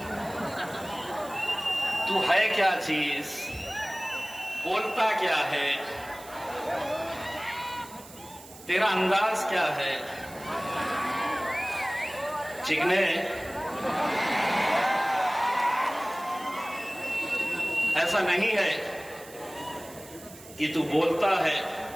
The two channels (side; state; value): right; noise; hiss, 19 dB below the sound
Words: तू है क्या चीज, बोलता क्या है, तेरा अंदाज क्या है? चिकने, ऐसा नहीं है कि तू बोलता है